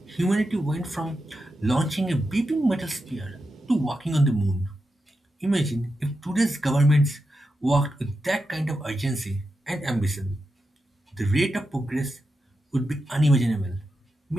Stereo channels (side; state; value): both; normal; correlation 0.88